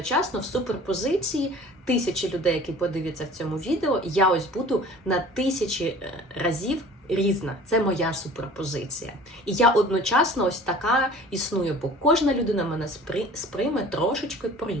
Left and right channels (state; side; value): normal; both; correlation 0.45